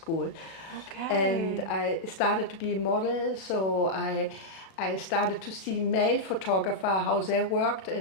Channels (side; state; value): right; late; 37 ms